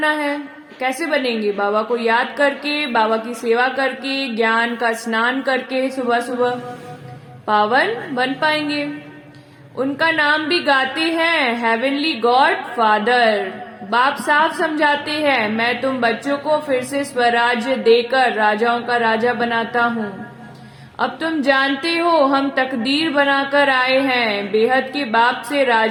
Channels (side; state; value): both; identical; correlation 1.00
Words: है। कैसे बनेंगे? बाबा को याद करके, बाबा की सेवा करके, ज्ञान का स्नान करके सुबह सुबह पावन बन पाएंगे। उनका नाम भी गाते हैं, हेवनली गॉड फादर। बाप साफ समझाते हैं मैं तुम बच्चों को फिर से स्वराज्य देकर राजाओं का राजा बनाता हूँ। अब तुम जानते हो हम तकदीर बनाकर आए हैं बेहद के बाप से